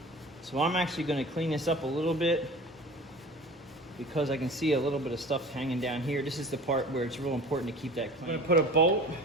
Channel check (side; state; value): both; normal; correlation 0.40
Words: So I'm actually gonna clean this up a little bit because I can see a little bit of stuff hanging down here. This is the part where it's real important to keep that clean. I'm gonna put a bolt